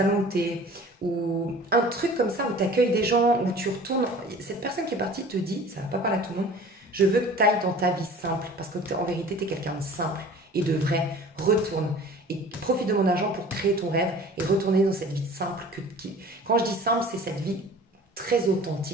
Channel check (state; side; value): normal; both; correlation 0.44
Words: de thé ou un truc comme ça où tu accueilles des gens, où tu retournes... Cette personne qui est partie te dit, ça ne va pas parler à tout le monde, je veux que tu ailles dans ta vie simple parce qu'en vérité, tu es quelqu'un de simple et de vrai. Retourne. Et profite de mon argent pour créer ton rêve et retourner dans cette vie simple. Quand je dis simple, c'est cette vie très